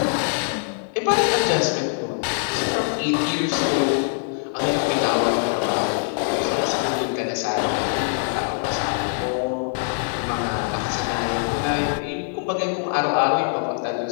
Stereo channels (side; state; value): right; silent; 63 dB below the other